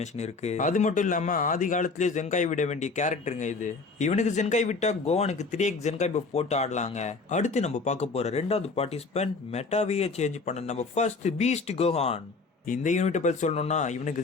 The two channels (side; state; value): right; quieter; 4.1 dB